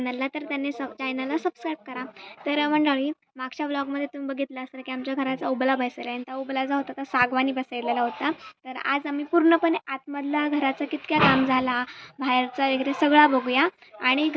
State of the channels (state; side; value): identical; both; correlation 1.00